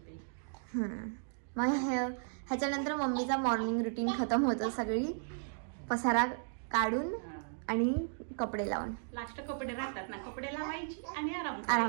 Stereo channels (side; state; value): left; silent; digital silence